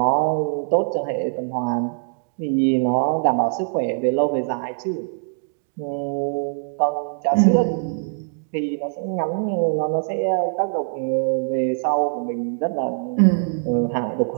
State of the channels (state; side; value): silent; left; digital silence